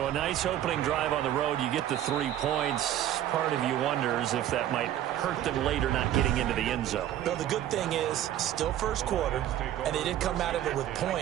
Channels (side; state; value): left; quieter; 12.0 dB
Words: a nice opening drive on the road. You get the 3 points. Part of you wonders if that might hurt them later not getting into the end zone. Well, the good thing is, still first quarter, and they did come out of it with